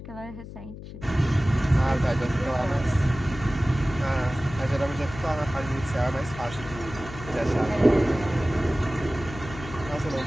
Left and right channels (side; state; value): left; noise; hum, 13 dB below the sound